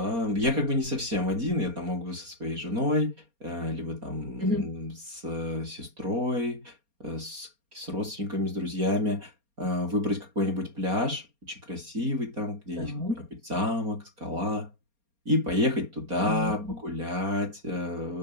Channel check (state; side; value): late; left; 4.3 ms